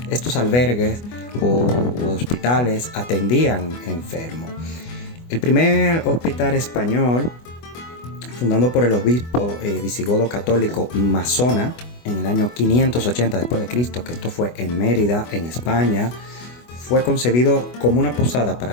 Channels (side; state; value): right; late; 24 ms